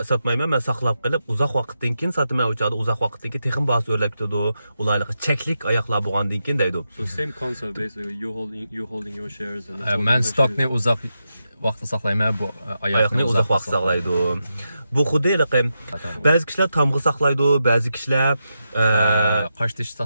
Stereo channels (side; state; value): both; inverted; correlation -0.87